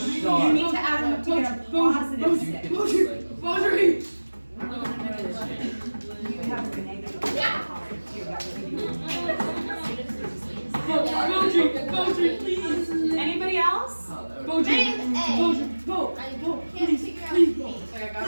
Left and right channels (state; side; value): inverted; both; correlation -1.00